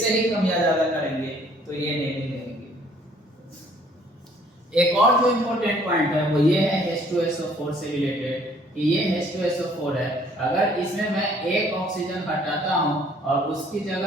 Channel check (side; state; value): both; normal; correlation 0.59